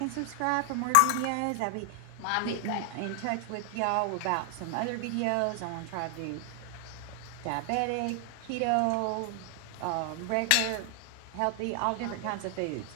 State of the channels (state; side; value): different; both; correlation 0.00